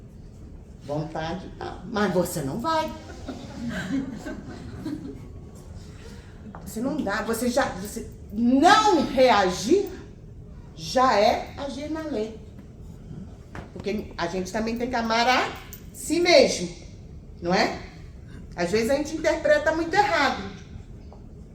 Vontade, mas você não vai. Você não dá, você não reagir já é agir na lei. Porque a gente também tem que amar a si mesmo, não é? Às vezes a gente interpreta muito errado,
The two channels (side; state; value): both; identical; correlation 1.00